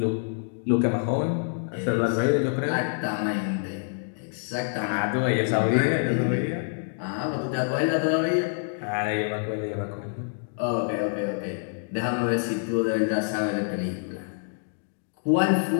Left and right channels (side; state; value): right; silent; digital silence